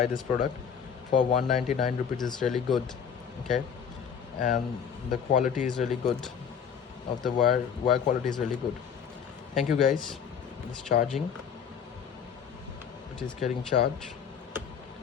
product for 199 rupees. It's really good. Okay, and the quality is really good. Of the wire quality is really good. Thank you, guys. It's charging. It is getting charged.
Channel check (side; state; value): right; quieter; 7.5 dB